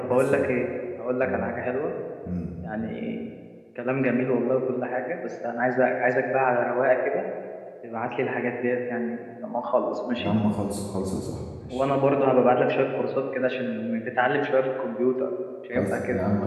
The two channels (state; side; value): identical; both; correlation 1.00